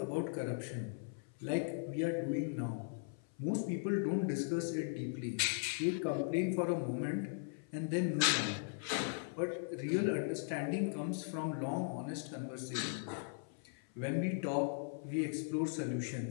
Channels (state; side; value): silent; right; 52 dB below the other